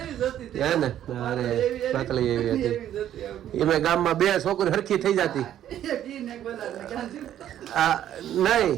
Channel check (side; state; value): left; quieter; 11.3 dB